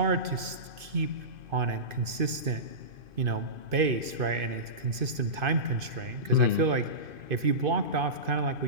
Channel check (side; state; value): left; late; 2.5 ms